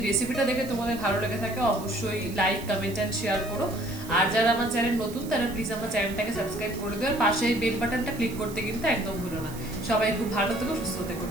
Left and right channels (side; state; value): right; noise; hiss, 16 dB below the sound